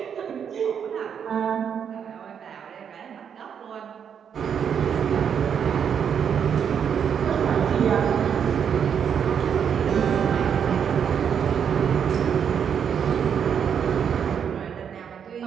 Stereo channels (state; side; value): quieter; left; 7.8 dB